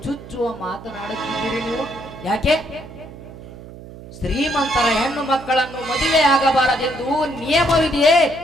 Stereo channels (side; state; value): right; noise; hum, 16 dB below the sound